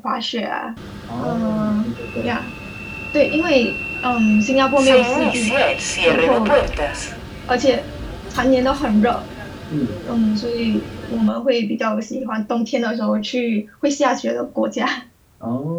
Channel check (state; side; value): identical; both; correlation 1.00